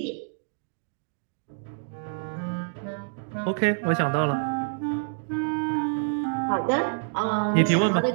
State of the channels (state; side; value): silent; left; digital silence